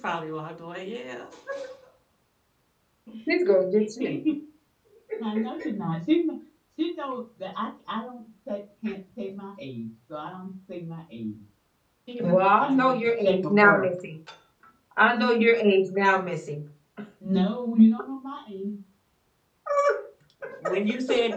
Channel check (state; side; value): identical; both; correlation 1.00